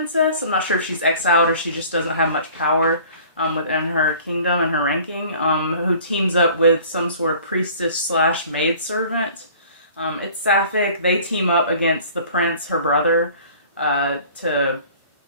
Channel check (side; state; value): both; inverted; correlation -0.49